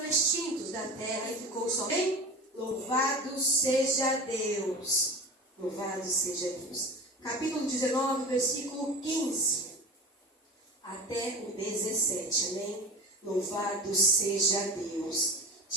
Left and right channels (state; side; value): normal; both; correlation 0.32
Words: extintos da terra e ficou somente. Louvado seja Deus. Louvado seja Deus. Capítulo 19, versículo 15 até o 17. Amém? Louvado seja Deus.